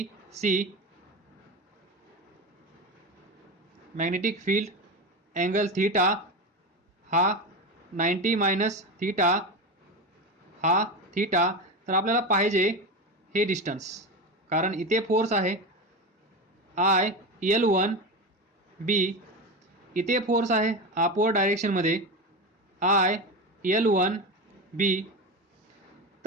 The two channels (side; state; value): both; normal; correlation 0.20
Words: magnetic field angle theta हा 90 मायनस थीटा, हा थीटा. तर आपल्याला पाहिजे हे डिस्टन्स, कारण इथे फोर्स आहे IL1B, इथे फोर्स आहे अपवर्ड डायरेक्शनमध्ये IL1B.